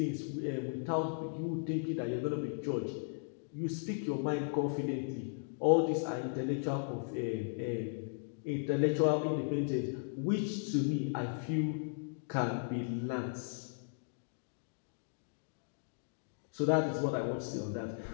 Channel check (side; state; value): right; silent; digital silence